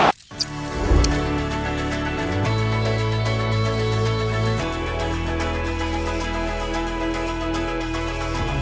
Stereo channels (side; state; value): both; identical; correlation 1.00